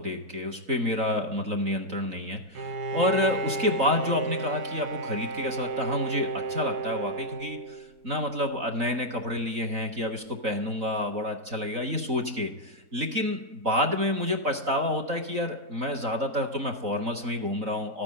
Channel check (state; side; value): late; left; 3.9 ms